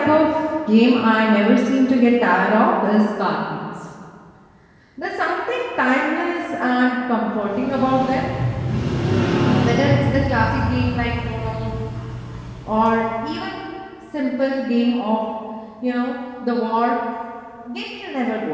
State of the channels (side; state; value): both; identical; correlation 1.00